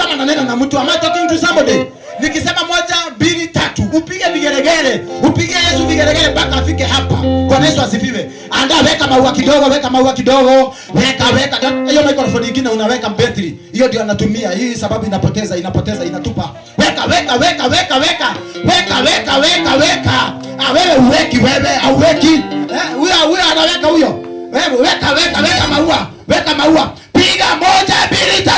nanena na mtu. Am I talking to somebody? Nikisema 1 2 3 upige vigeregere. Upige Yesu vigeregere mpaka afike hapa. Bwana Yesu asifiwe. Anda weka maua kidogo. Weka. Hiyo microphone nyingine unaweka battery. Hiyo ndio anatumia. Hii sababu inapoteza inatupa. Weka. Wewe uweki wewe auweki. Huyo anaweka huyo. Wewe weka maua. Piga 1 2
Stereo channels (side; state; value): both; identical; correlation 1.00